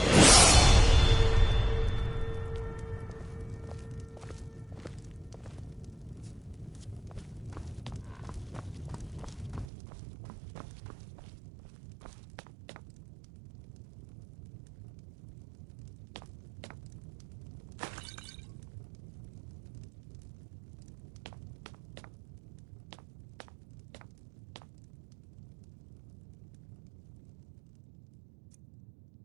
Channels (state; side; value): drops out; left; at 9.7 s